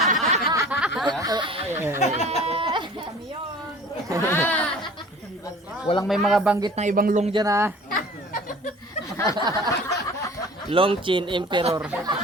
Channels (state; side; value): normal; both; correlation 0.45